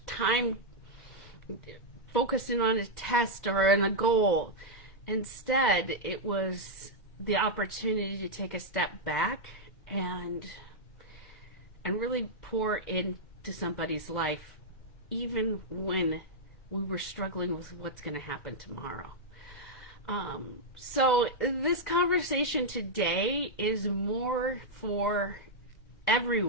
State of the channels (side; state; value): right; late; 2.1 ms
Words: time focusing on a test or on a goal. Instead, it was the opportunity to take a step back and really pour into somebody's life, even when we were struggling with what's going to happen tomorrow. So this conversation today is more for